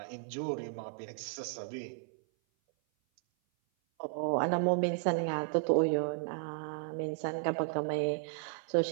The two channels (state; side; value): silent; left; 55 dB below the other